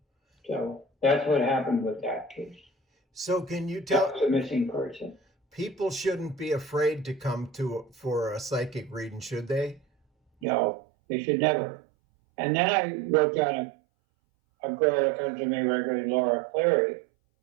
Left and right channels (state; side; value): drops out; left; at 10.5 s